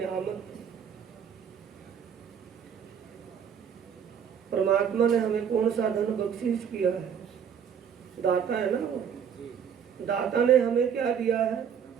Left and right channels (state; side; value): quieter; left; 7.8 dB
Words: परमात्मा ने हमें कौन सा धन बख्शीश किया है? दाता है ना वो। दाता ने हमें क्या दिया है?